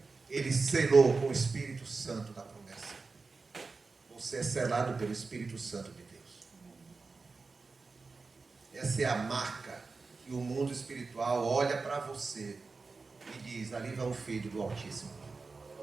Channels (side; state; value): left; quieter; 4.2 dB